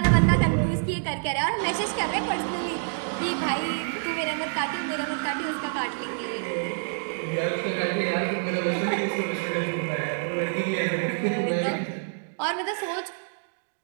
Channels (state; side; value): silent; left; digital silence